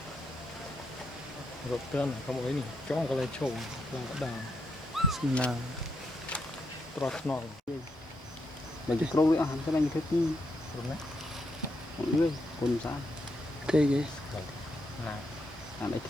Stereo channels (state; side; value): normal; both; correlation 0.80